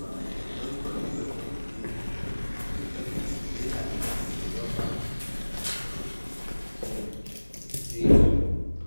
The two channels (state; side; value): inverted; both; correlation -1.00